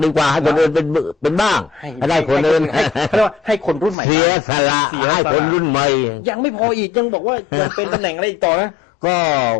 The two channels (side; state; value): right; drops out; at 4.0 s